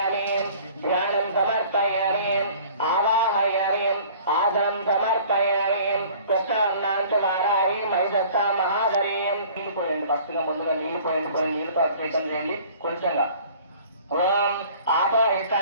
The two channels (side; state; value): both; inverted; correlation -0.50